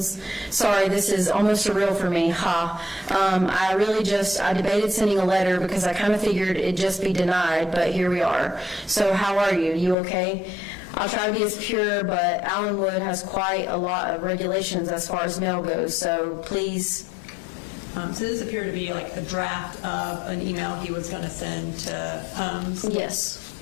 sorry, this is almost surreal for me, ha. I debated sending a letter because I kind of figured it'd just be denied, but here we are. So how are you? You okay? I'll try to be as pure, but Allenwood has quite a lot of regulations as far as mail goes, so please." So this appeared to be like a draft of an email he was going to send to Holmes? Yes.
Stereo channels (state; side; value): drops out; right; at 10.0 s